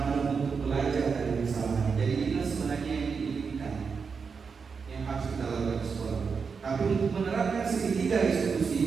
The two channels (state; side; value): quieter; left; 5.5 dB